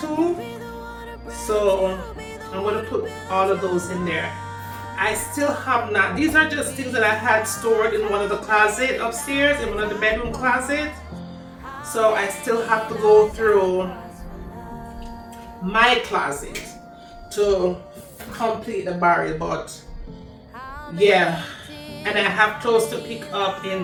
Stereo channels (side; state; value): both; identical; correlation 1.00